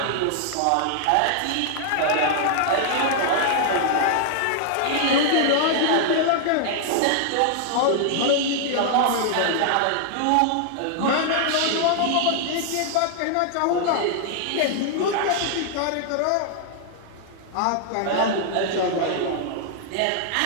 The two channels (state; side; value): different; both; correlation -0.01